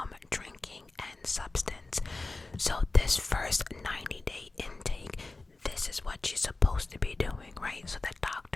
drinking and substance. So this first 90-day intake, this is what she's supposed to be doing, right? So the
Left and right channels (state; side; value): quieter; right; 3.3 dB